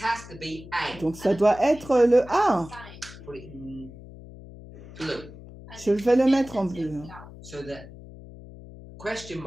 has to be A. Donc ça doit être le A. Put it in blue. Je vais le mettre en bleu. So the question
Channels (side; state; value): left; noise; hum, 17 dB below the sound